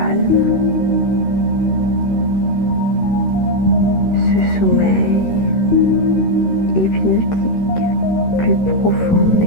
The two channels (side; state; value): right; late; 13 ms